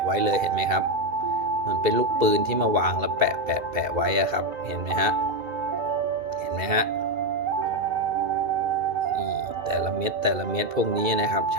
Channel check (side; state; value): left; late; 2.8 ms